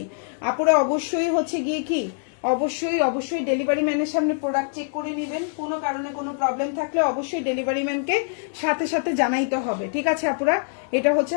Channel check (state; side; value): silent; right; digital silence